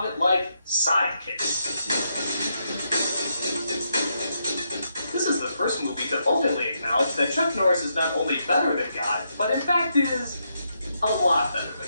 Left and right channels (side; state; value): both; inverted; correlation -0.80